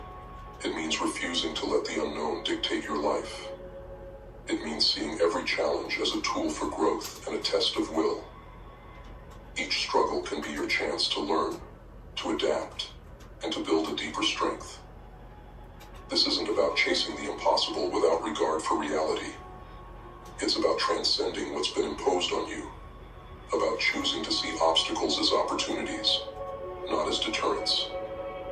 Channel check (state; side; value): identical; both; correlation 1.00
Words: It means refusing to let the unknown dictate your life. It means seeing every challenge as a tool for growth and a test of will. Each struggle can be your chance to learn, to adapt, and to build a deeper strength. This isn't about chasing the impossible without regard for reality. It's about transcending what's been imposed on you, about choosing to see obstacles as opportunities, not as deterrents.